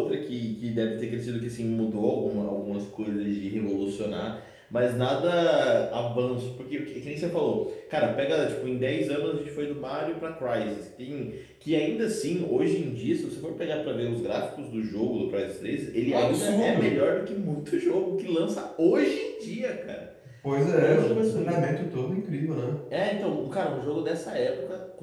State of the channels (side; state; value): both; identical; correlation 1.00